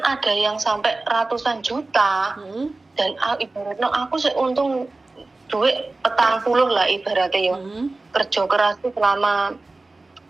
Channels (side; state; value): left; quieter; 3.2 dB